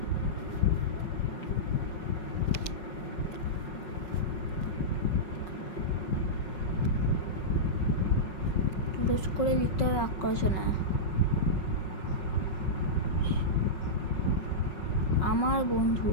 পুরুষ করে লিখতে হবে বাক্য রচনা। আমার বন্ধু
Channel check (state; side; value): late; right; 5.4 ms